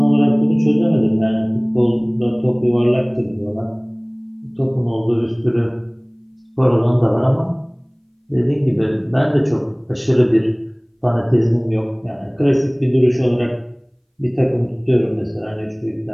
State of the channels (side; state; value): both; identical; correlation 1.00